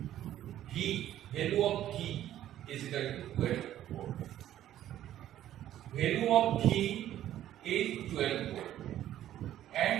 V, value of V is equal to 12 volt. Value of V is 12 volt,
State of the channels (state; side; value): quieter; left; 12.3 dB